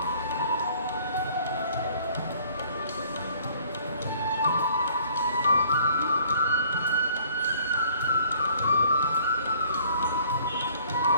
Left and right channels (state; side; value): inverted; both; correlation -0.57